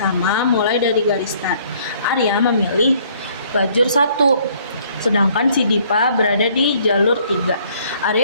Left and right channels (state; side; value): inverted; both; correlation -0.61